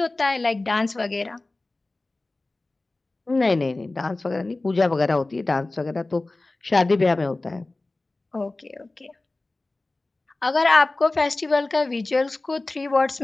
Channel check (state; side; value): quieter; right; 3.0 dB